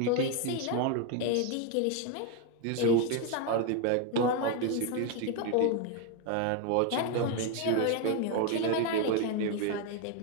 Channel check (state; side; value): different; both; correlation 0.01